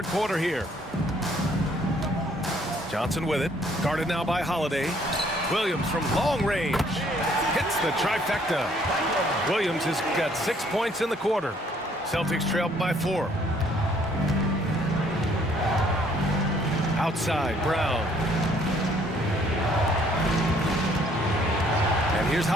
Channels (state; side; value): normal; both; correlation 0.63